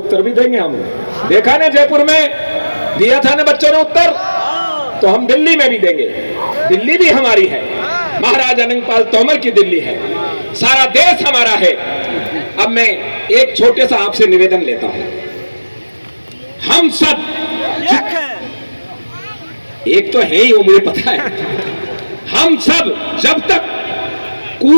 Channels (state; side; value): inverted; both; correlation -1.00